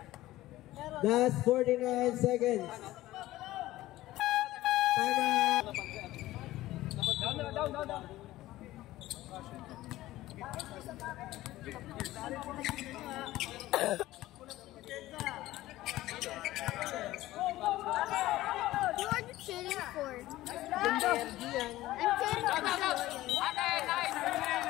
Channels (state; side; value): quieter; right; 16.3 dB